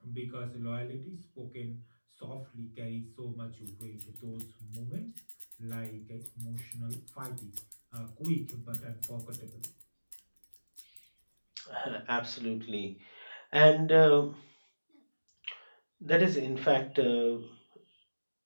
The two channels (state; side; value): inverted; both; correlation -1.00